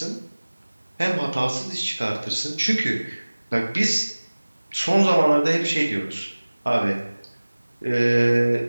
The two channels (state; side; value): inverted; both; correlation -1.00